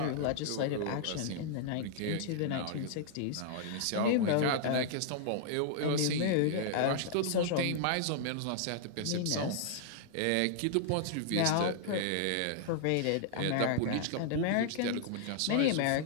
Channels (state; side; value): different; both; correlation -0.01